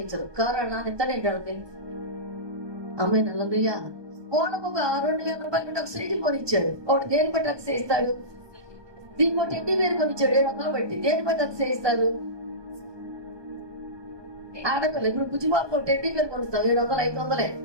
కారు నాన్న ఎంత నేను అమ్మాయి నల్లయ్యా ఓనకు ఒక 2,000 రూపాయలు ఒక సైకిల్ కొనిచ్చాడు. ఒకటి దేని బట్టి అతిశయిస్తాడు? దీనికి ఒక టెడ్డీ బేర్ కొనిచ్చాడు 700 బట్టి. దేని బట్టి అతిశయిస్తారు? ఆడపిల్ల ఇప్పుడు బుజ్జిబాబు టెడ్డీ బేర్ కొనిస్తాం 700 500.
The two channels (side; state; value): left; late; 1.2 ms